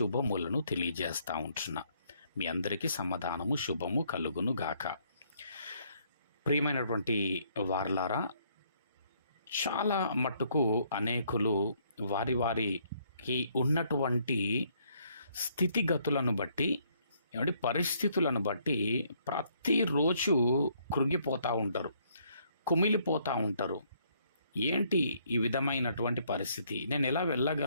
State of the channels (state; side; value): inverted; both; correlation -0.68